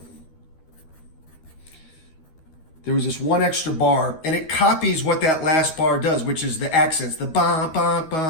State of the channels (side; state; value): right; late; 13 ms